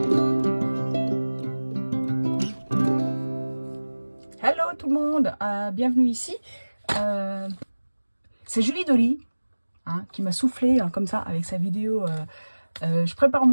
tout le monde, bienvenue ici. C'est Julie Dolly qui m'a soufflé comme ça avec sa vidéo. Je prépare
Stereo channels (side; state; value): both; inverted; correlation -1.00